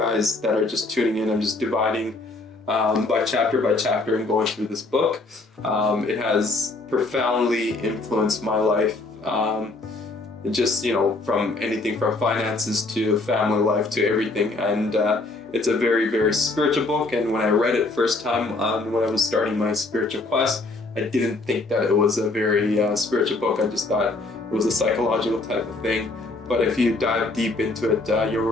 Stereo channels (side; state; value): right; quieter; 3.2 dB